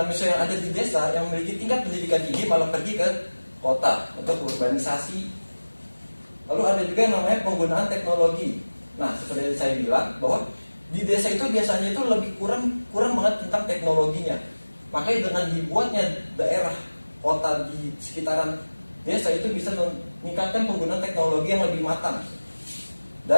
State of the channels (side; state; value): both; inverted; correlation -1.00